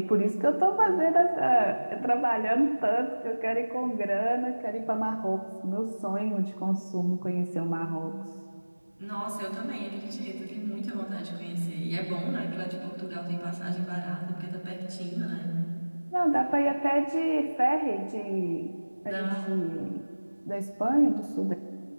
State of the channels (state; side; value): inverted; both; correlation -1.00